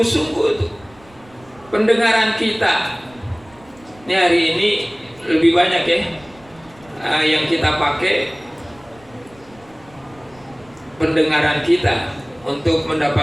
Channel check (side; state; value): right; noise; rumble, 26 dB below the sound